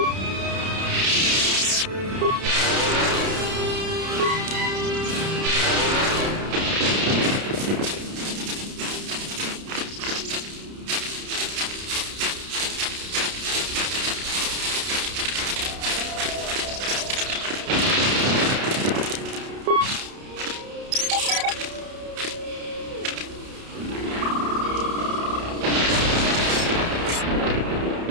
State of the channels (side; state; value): left; late; 30 ms